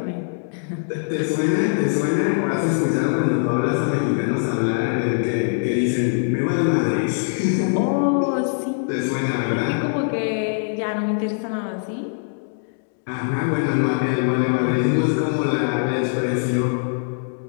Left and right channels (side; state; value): right; silent; digital silence